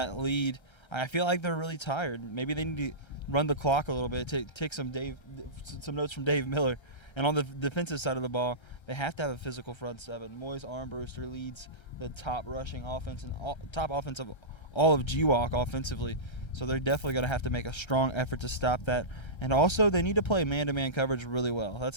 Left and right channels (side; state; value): right; late; 1.3 ms